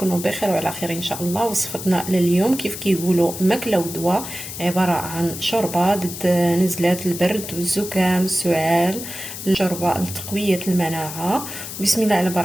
بخير وعلى خير ان شاء الله. وصفتنا لليوم كيف كيقولوا ماكله ودواء، عباره عن شوربه ضد نزلات البرد والزكام السعال، شوربه لتقويه المناعه. بسم الله على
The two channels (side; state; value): left; noise; hiss, 9 dB below the sound